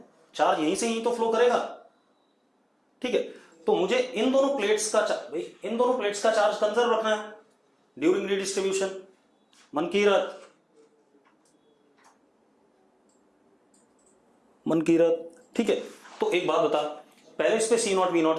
चार्ज यहीं से यहीं तो फ्लो करेगा, ठीक है। तो मुझे इन दोनों प्लेट्स का, भाई इन दोनों प्लेट्स का चार्ज कंजर्व रखना है ड्यूरिंग रिडिस्ट्रीब्यूशन। मनकीरत, ठीक है। तो एक बात बता, पहले इस पे C नॉट V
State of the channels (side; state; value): both; identical; correlation 1.00